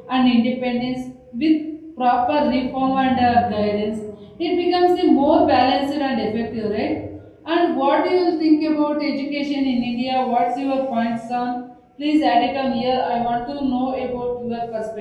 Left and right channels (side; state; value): both; identical; correlation 1.00